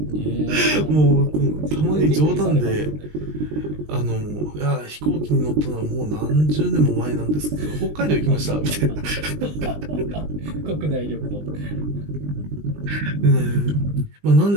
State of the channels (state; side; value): late; left; 20 ms